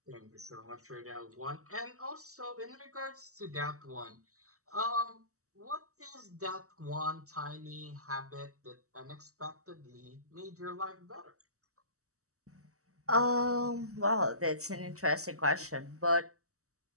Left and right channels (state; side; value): late; left; 0.65 ms